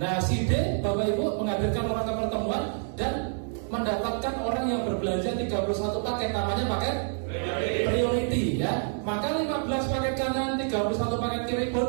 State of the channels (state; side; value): silent; left; 60 dB below the other